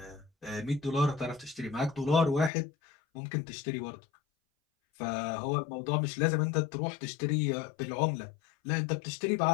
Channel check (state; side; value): drops out; right; at 2.5 s